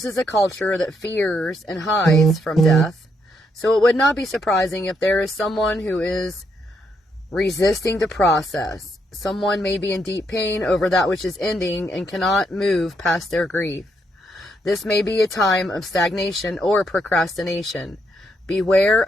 is a culture that fears and hides from death, so it would not be surprising if there is someone who is resisting the process. Someone may be in deep pain over that which is ending and cannot move past their grief. This may be a time of stagnation or procrastination. Beware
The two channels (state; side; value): normal; both; correlation 0.76